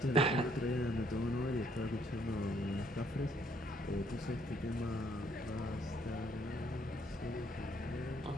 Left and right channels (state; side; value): normal; both; correlation 0.68